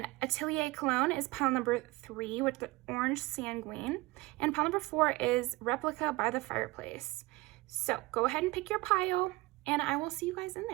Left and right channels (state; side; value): quieter; left; 21.6 dB